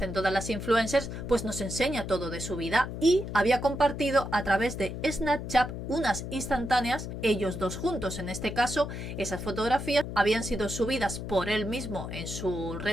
todas las influencers, pues nos enseña todo de su vida y había compartido a través de Snapchat unas instantáneas, ellos dos juntos. En este caso, esas fotografías habían sido subidas por él mismo en su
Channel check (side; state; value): left; noise; hum, 7 dB below the sound